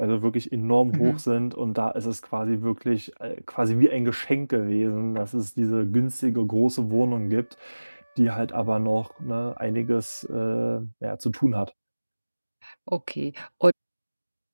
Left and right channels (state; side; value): inverted; both; correlation -1.00